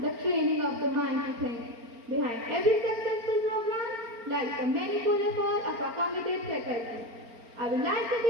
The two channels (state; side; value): late; left; 4.3 ms